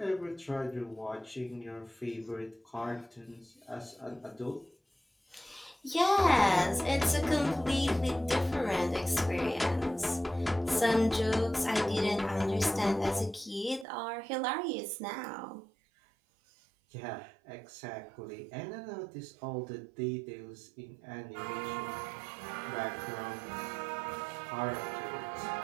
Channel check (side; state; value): left; drops out; at 13.9 s